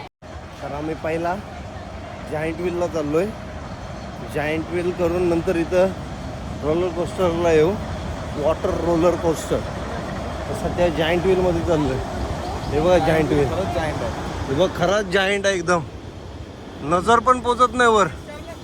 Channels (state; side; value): identical; both; correlation 1.00